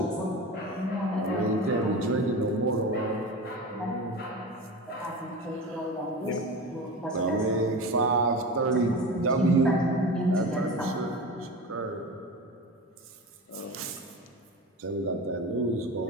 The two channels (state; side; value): normal; both; correlation 0.29